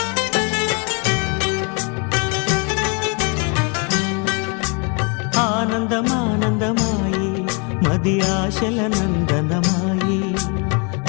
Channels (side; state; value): right; quieter; 34.3 dB